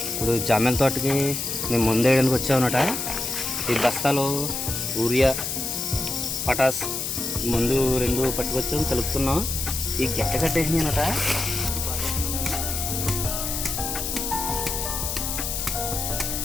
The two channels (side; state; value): left; noise; hiss, 3 dB below the sound